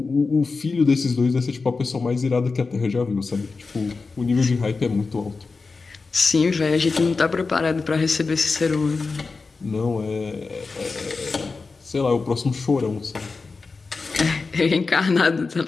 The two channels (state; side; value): quieter; right; 4.2 dB